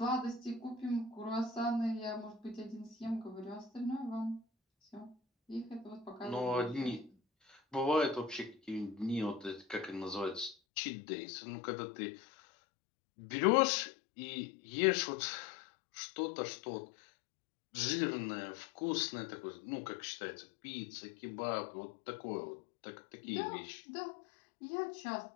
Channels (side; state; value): right; drops out; at 10.6 s